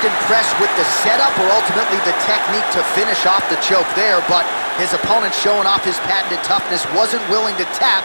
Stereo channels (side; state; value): both; inverted; correlation -1.00